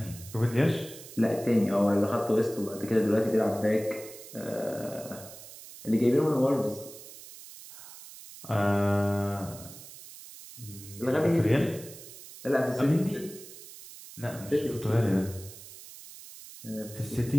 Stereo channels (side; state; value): right; noise; hiss, 16 dB below the sound